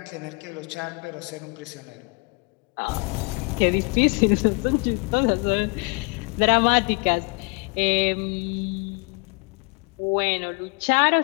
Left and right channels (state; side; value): quieter; right; 32.5 dB